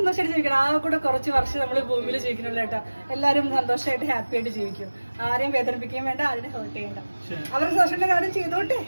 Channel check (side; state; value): both; inverted; correlation -1.00